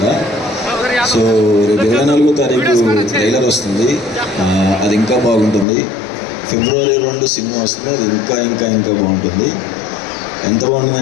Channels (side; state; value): right; drops out; at 5.7 s